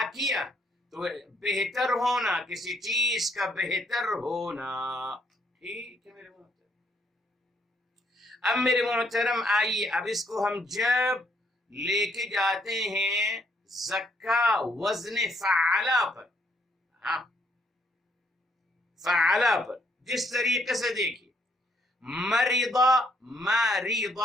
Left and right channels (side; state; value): both; normal; correlation 0.70